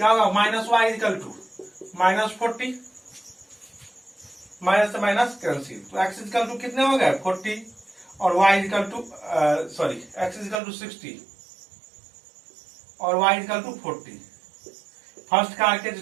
होगा minus y equal to minus 40, minus से माइनस कैंसिल, तो x इक्वल टू कितने हो गए 40 और y equal to x equal to 60 और y equal to 40। First car के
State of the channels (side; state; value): left; drops out; at 10.6 s